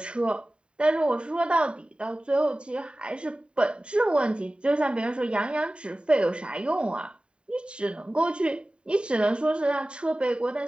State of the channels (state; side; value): late; left; 0.053 ms